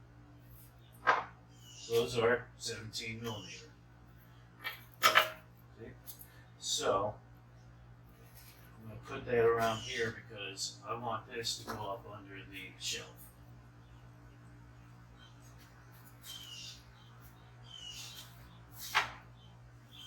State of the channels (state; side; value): identical; both; correlation 1.00